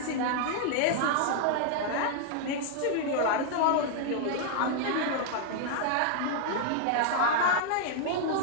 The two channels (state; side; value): different; both; correlation 0.00